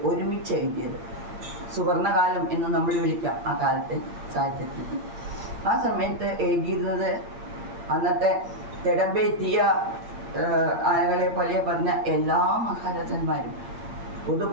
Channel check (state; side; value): late; left; 8.7 ms